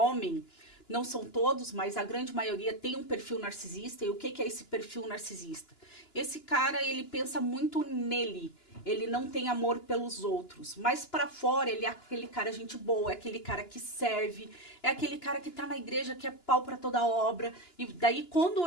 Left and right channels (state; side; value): late; right; 2.9 ms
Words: não são todos, mas a grande maioria tem um perfil narcisista. E o que é esse perfil narcisista? Esse cara, ele pensa muito nele. Ele não tem amor pelos outros. Mas para fora, ele é aquele cara gente boa, é aquele cara que serve, é aquele cara que tá na igreja, que é pau para toda obra. E daí, quando